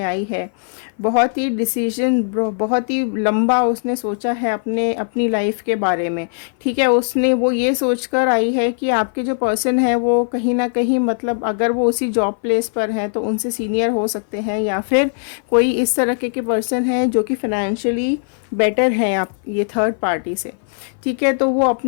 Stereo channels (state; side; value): silent; right; 57 dB below the other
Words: आई है। बहुत ही डिसीजन, बहुत ही लंबा उसने सोचा है अपनी लाइफ के बारे में, ठीक है। उसने वो ये सोचकर आई है कि आपके जो पर्सन है वो कहीं ना कहीं, मतलब अगर वो उसी जॉब प्लेस पर हैं तो उनसे सीनियर हो सकते हैं, या फिर कोई इस तरह के पर्सन है जो कि फाइनेंशियली बेटर है आप ये थर्ड पार्टी से, ठीक है। तो वो